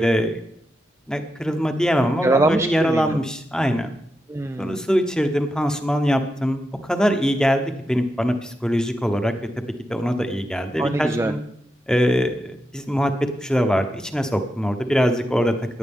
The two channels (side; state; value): both; normal; correlation 0.87